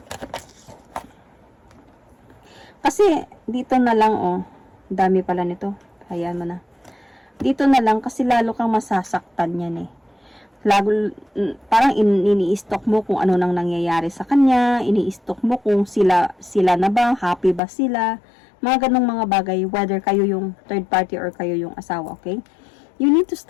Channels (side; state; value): right; drops out; at 17.6 s